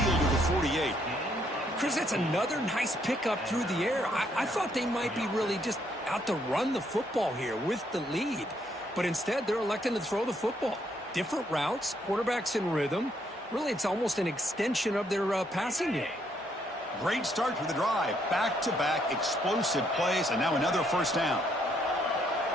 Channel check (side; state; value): both; normal; correlation 0.72